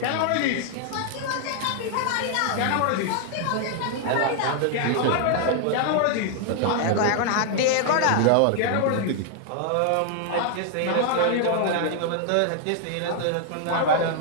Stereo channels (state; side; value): different; both; correlation 0.00